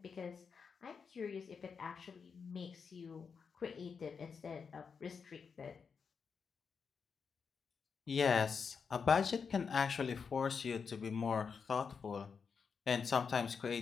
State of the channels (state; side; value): quieter; right; 5.9 dB